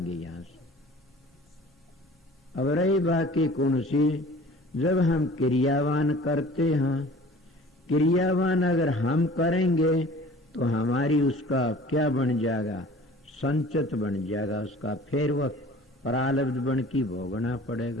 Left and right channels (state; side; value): normal; both; correlation 0.46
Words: यहाँ से। अब रही बाकी कौन सी? जब हम क्रियावान करते हैं, क्रियावान अगर हम करेंगे तो हमारी उसका क्या बन जाएगा? संचित बन जाएगा उसका। फिर वह प्रालब्ध बन की भोगना